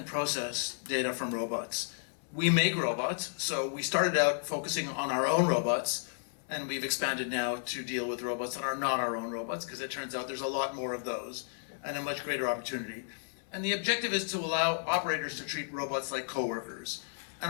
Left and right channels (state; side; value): silent; right; digital silence